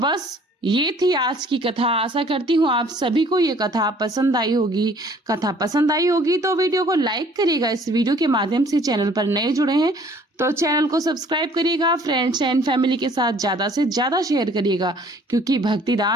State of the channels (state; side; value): normal; both; correlation 0.56